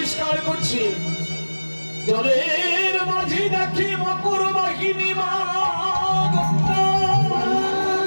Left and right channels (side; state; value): both; inverted; correlation -1.00